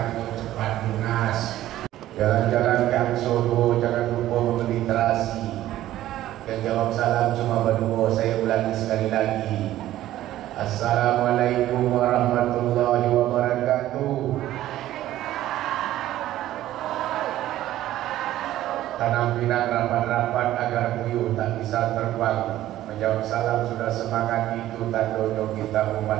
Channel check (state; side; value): quieter; left; 14.0 dB